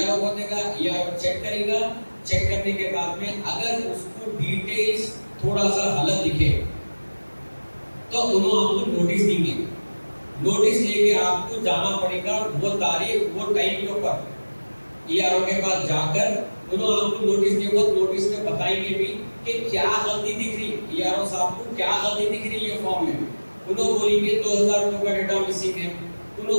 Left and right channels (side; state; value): both; inverted; correlation -1.00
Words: को देगा, ईआरओ चेक करेगा। चेक करने के बाद में अगर उसको डिटेल्स थोड़ा सा गलत दिखे तो उन्होंने आपको नोटिस देंगे। नोटिस लेके आपको जाना पड़ेगा वो तारीख वो टाइम के ऊपर ईआरओ के पास जाकर उन्होंने आपको नोटिस दिया। वो नोटिस में बताएंगे भी कि क्या गलती दिख रही, ईआरओ साहब को क्या गलती दिख रही है फॉर्म में। उन्होंने बोलेंगे 2002 का डेटा मिसिंग है,